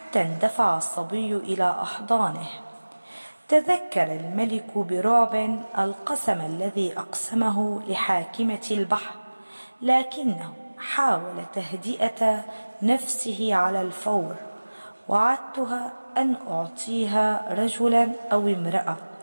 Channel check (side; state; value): both; inverted; correlation -1.00